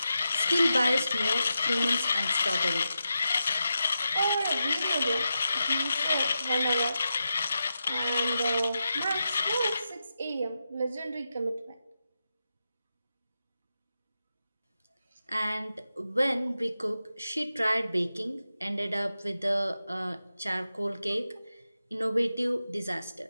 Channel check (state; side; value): inverted; both; correlation -0.89